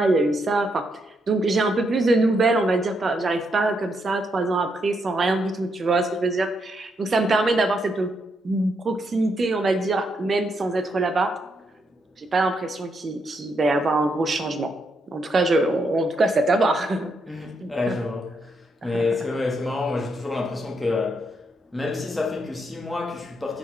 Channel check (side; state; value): both; normal; correlation 0.79